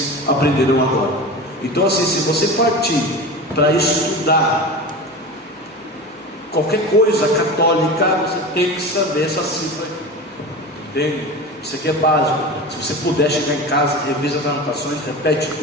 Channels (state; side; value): normal; both; correlation 0.30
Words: aprenderam agora. Então assim, se você partir para estudar qualquer coisa católica, você tem que saber essa cifra aqui. Entende? Isso aqui é básico. Se você puder chegar em casa, revisa as anotações, repete